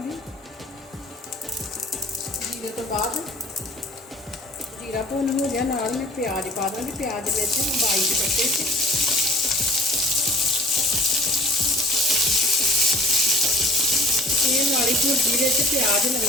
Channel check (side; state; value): both; normal; correlation 0.48